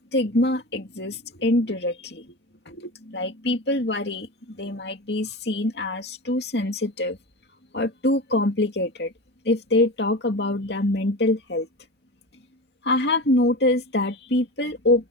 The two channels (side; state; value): both; normal; correlation 0.28